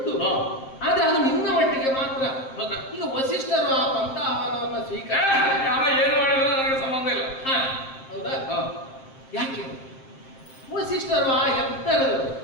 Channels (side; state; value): right; late; 7.6 ms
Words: ಆದ್ರೆ ಅದು ನಿನ್ನ ಮಟ್ಟಿಗೆ ಮಾತ್ರ. ಈಗ ವಸಿಷ್ಠರು ಆ ಪಂಥಾಹ್ವಾನವನ್ನ ಸ್ವೀಕಾರ ಯಾವ ಏನು ಮಾಡಿದ್ರೆ ನನಗೆ ಸಂಬಂಧ ಇಲ್ಲ. ಹೌದಾ? ಯಾಕೆ ವಸಿಷ್ಠರು ಆ ಎತ್ತರದವರು,